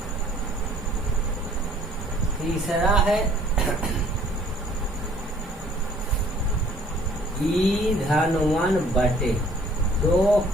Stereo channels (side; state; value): both; normal; correlation 0.57